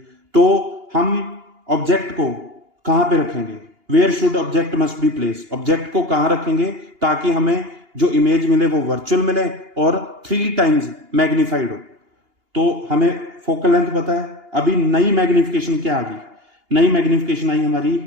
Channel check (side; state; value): left; late; 2.8 ms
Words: तो हम ऑब्जेक्ट को कहां पे रखेंगे, where should object must be place, object को कहां रखेंगे ताकि हमें जो इमेज मिले वो वर्चुअल मिले और 3 टाइम्स मैग्निफाइड हो। तो हमें फोकल लेंथ पता है, अभी नई मैग्निफिकेशन क्या आ गई, नई मैग्निफिकेशन आई